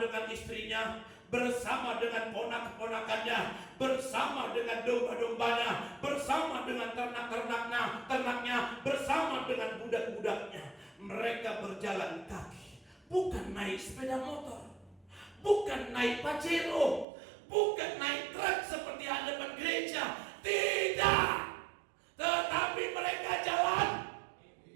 istrinya, bersama dengan ponak-ponakannya, bersama dengan domba-dombanya, bersama dengan ternak-ternaknya, bersama dengan budak-budaknya. Mereka berjalan kaki, bukan naik sepeda motor, bukan naik Pajero, bukan naik truk seperti hadapan gereja. Tidak, tetapi mereka jalan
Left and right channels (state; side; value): drops out; left; at 17.1 s